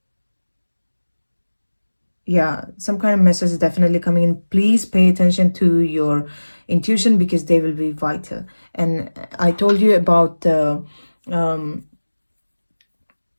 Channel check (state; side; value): inverted; both; correlation -1.00